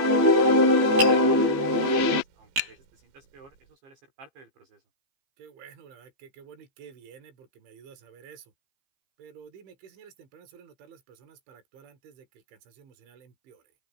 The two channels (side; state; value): left; late; 15 ms